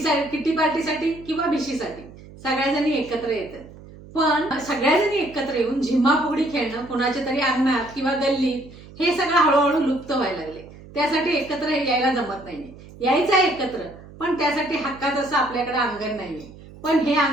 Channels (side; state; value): right; noise; hum, 19 dB below the sound